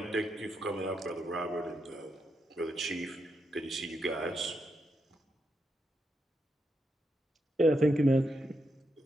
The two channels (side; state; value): both; normal; correlation 0.83